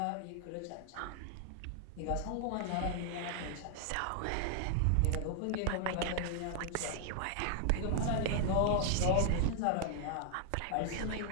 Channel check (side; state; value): both; different; correlation 0.00